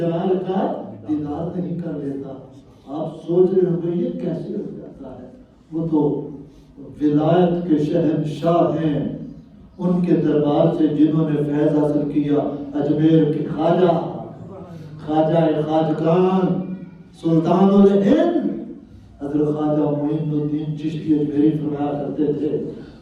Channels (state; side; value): identical; both; correlation 1.00